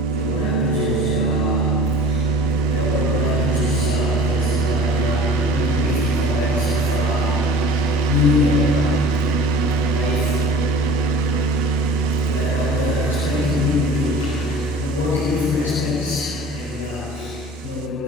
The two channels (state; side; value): normal; both; correlation 0.43